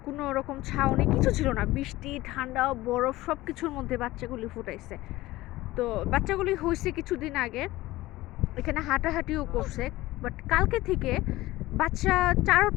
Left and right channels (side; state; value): right; quieter; 17.9 dB